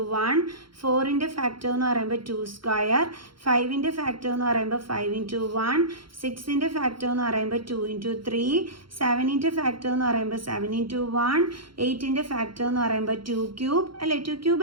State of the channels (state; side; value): late; left; 0.73 ms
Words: 1, 4ൻ്റെ ഫാക്ടർ എന്ന് പറയുമ്പോൾ 2², 5ൻ്റെ ഫാക്ടർ എന്ന് പറയുമ്പോൾ 5 into 1, 6ൻ്റെ ഫാക്ടർ എന്ന് പറയുമ്പോൾ 2 into 3, 7ൻ്റെ ഫാക്ടർ എന്ന് പറയുമ്പോൾ 7 into 1, 8ൻ്റെ ഫാക്ടർ എന്ന് പറയുമ്പോൾ 2³ അല്ലേ? 2³